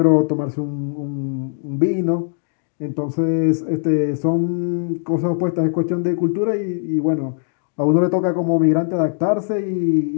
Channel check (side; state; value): right; silent; digital silence